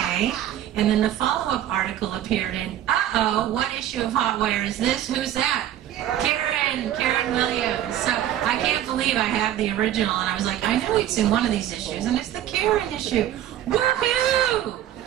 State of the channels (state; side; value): quieter; left; 11.8 dB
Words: and then the follow-up article appeared in, what issue of Hot Wire is this? Who's that? Karen Williams. So I can't believe I have the original, and I was like, I know it's in one of these issues, and it's the Karen issue. Woohoo!